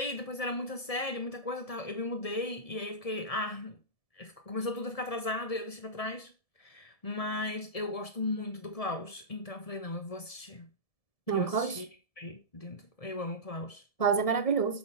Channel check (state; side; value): late; right; 1.7 ms